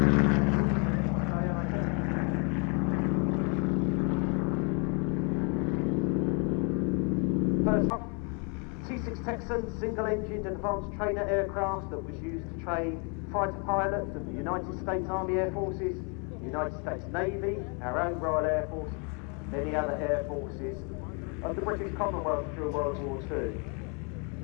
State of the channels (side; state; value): right; quieter; 36.1 dB